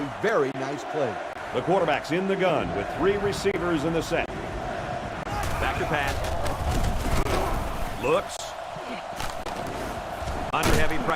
very nice play. The quarterback's in the gun with 3 receivers in the set. Back to pass. Looks. Under heavy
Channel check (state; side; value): identical; both; correlation 1.00